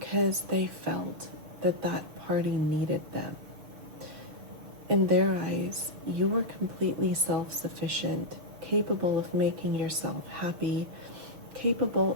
they felt that that party needed them. In their eyes, you were completely self-sufficient, capable of making yourself happy, capable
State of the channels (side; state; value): left; late; 6.6 ms